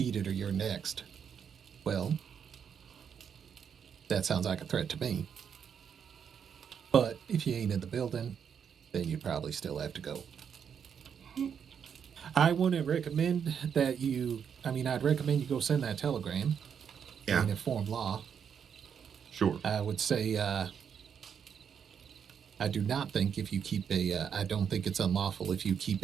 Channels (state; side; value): quieter; left; 7.5 dB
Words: it or you're next. Well, that sounds like a threat to me. But if you ain't in the building, then you probably still have to go. I wouldn't recommend that I'd recommend you go send that telegram and inform law. Sure. I would say, I do not think if you keep I don't think it's unlawful if you keep